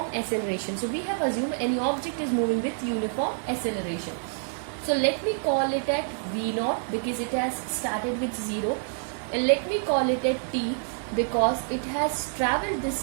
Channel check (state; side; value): silent; left; digital silence